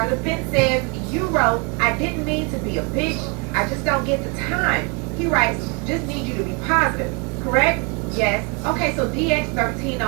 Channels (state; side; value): quieter; left; 31.9 dB